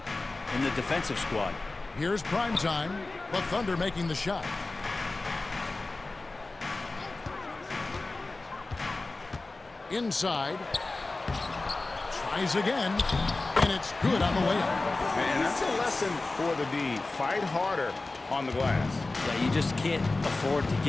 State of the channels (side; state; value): right; quieter; 3.3 dB